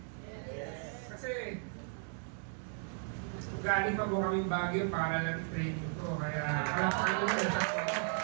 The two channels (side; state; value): left; silent; 54 dB below the other